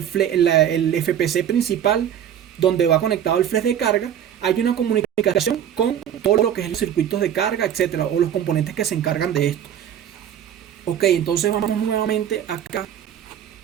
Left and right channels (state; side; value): quieter; left; 9.9 dB